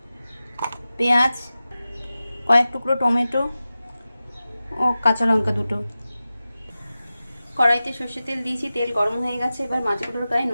পেঁয়াজ, কয়েক টুকরো টমেটো ও কাঁচা লঙ্কা দুটো। কড়াইতে সর্ষের তেল দিয়েছি, তেল গরম হয়ে গেছে। এবার মাছগুলোর গায়ে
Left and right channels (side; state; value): both; inverted; correlation -0.95